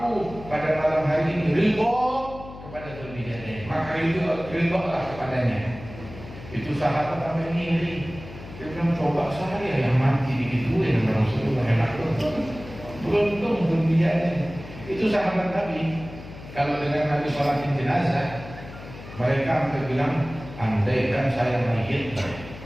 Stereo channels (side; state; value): left; noise; hum, 14 dB below the sound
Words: pada malam hari ini ridha kepada Dzulbijadah, maka ridhalah kepadanya. Itu sahabat sampai ngiri. Dia bilang, coba saya yang mati digituin sama Rasulullah, enak betul. Beruntung Dzulbijadah. Itu sahabat Nabi. Kalau dengan Nabi sholatin jenazah, mereka hampir bilang, andaikan saya mayit.